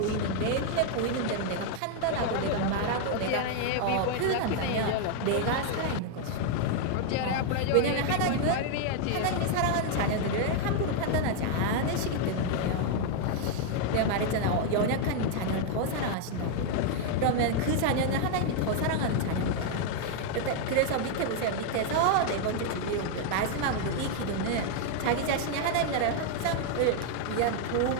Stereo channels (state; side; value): different; both; correlation 0.00